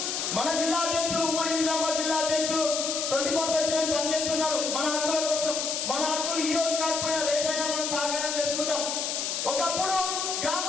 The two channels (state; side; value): noise; left; hiss, 1 dB below the sound